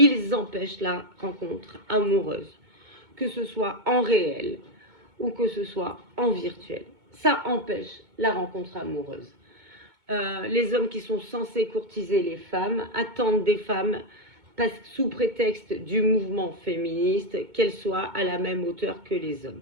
empêchent la rencontre amoureuse, que ce soit en réel ou que ce soit en virtuel. Ça empêche la rencontre amoureuse. les hommes qui sont censés courtiser les femmes attendent des femmes sous prétexte du mouvement féministe qu'elles soient à la même hauteur que les hommes.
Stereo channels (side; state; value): left; late; 2.2 ms